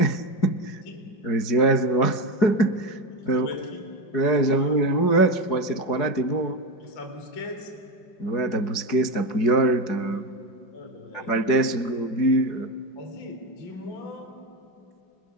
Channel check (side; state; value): right; late; 4.8 ms